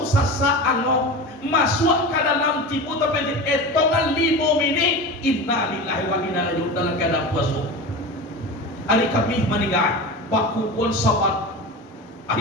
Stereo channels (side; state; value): both; normal; correlation 0.28